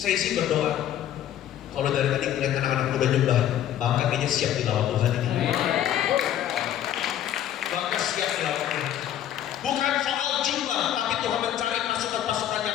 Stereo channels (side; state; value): right; quieter; 11.1 dB